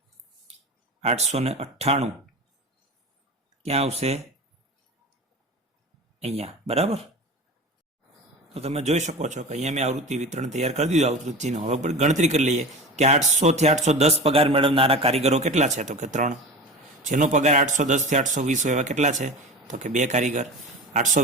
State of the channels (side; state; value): both; normal; correlation 0.32